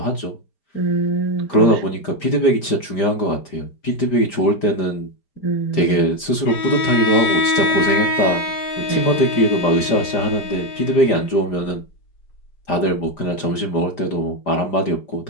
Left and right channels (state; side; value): late; right; 5.0 ms